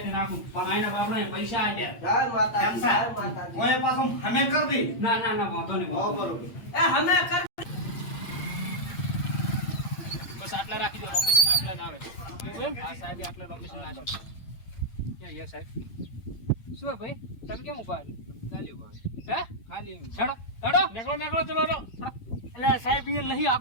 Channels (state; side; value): late; right; 8.8 ms